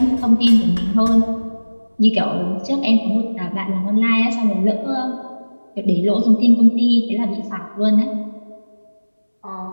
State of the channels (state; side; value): inverted; both; correlation -1.00